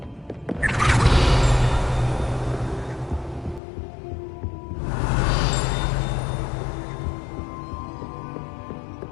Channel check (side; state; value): right; drops out; at 3.6 s